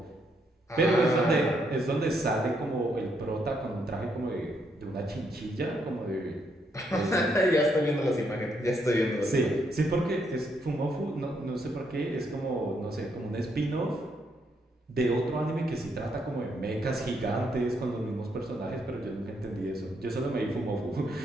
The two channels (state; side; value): normal; both; correlation 0.75